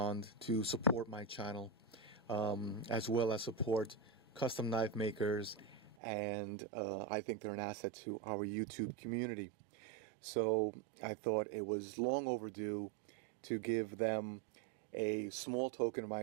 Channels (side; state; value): left; drops out; at 6.0 s